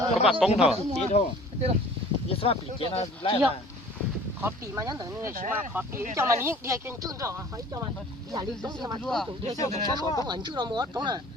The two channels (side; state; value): both; normal; correlation 0.48